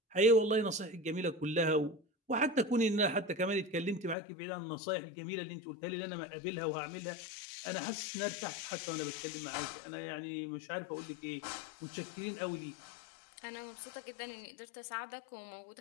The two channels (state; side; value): drops out; right; at 4.2 s